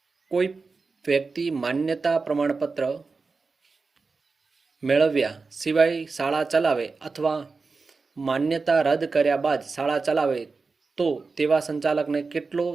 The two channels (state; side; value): quieter; left; 4.3 dB